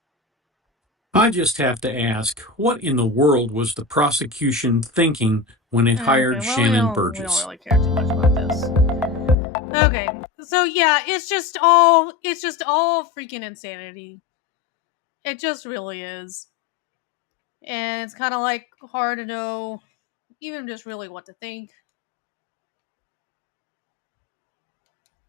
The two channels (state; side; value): drops out; right; at 9.3 s